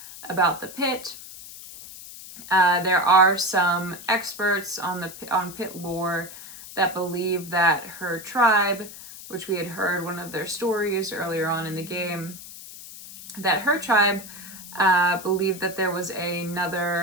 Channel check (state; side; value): noise; left; hiss, 14 dB below the sound